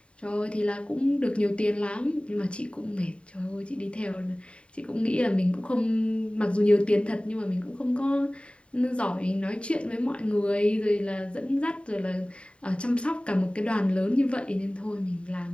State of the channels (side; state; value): right; late; 0.058 ms